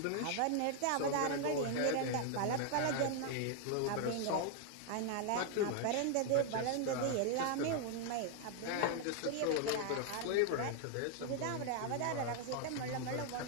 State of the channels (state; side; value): different; both; correlation 0.00